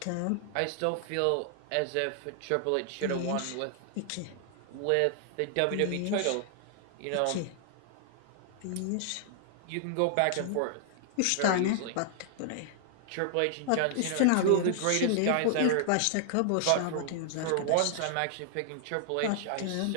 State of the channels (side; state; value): both; different; correlation -0.01